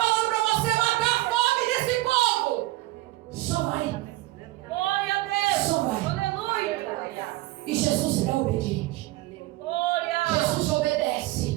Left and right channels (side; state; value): left; quieter; 18.4 dB